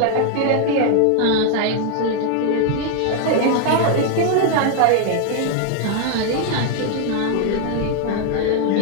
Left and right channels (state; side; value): different; both; correlation 0.00